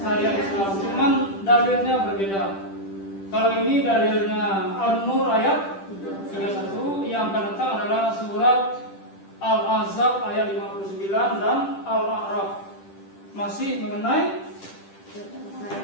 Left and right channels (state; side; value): late; right; 10 ms